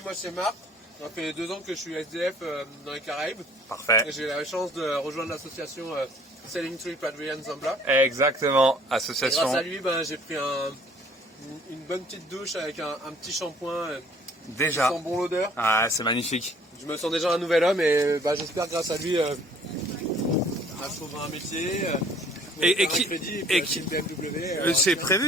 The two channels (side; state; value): both; normal; correlation 0.55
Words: moi c'est Marc. Ça fait 2 ans que je suis SDF dans les Caraïbes. Parfait. J'ai eu la chance de rejoindre l'association Selling Trip Adrian Zambla. Exactement, Et association. grâce à lui, j'ai pris une bonne petite douche avec un petit shampoing. Déjà. Qui sent bon l'odeur. Ah, c'est magnifique. Je me sens déjà un nouvel homme et j'espère grâce à lui trouver un métier. Et qui c'est